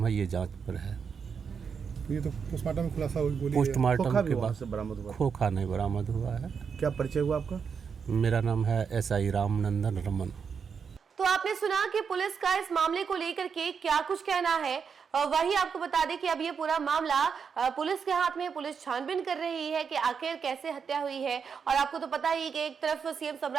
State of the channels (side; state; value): left; quieter; 6.3 dB